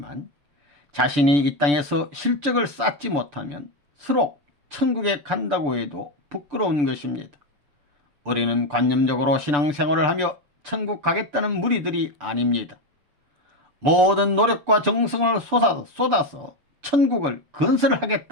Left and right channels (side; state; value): left; late; 6.9 ms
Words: 자신이 이 땅에서 실적을 쌓지 못하면 서로 천국에 간다고 해도 부끄러운 것입니다. 우리는 관념적으로 신앙생활을 하며 천국 가겠다는 무리들이 아닙니다. 모든 노력과 정성을 쏟아서 천국을